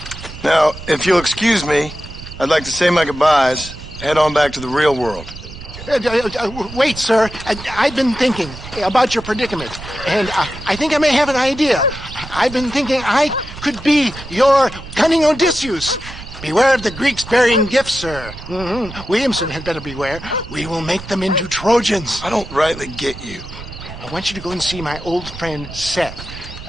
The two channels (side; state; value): right; noise; rumble, 13 dB below the sound